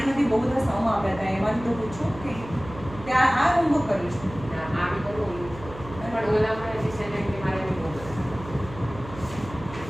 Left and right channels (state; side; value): noise; right; hum, 14 dB below the sound